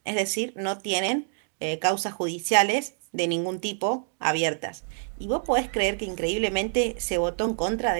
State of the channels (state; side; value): silent; left; digital silence